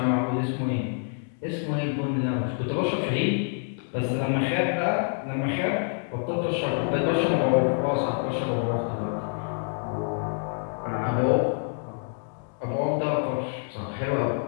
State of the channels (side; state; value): right; silent; 60 dB below the other